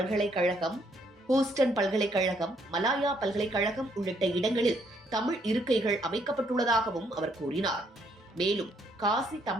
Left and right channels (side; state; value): both; normal; correlation 0.70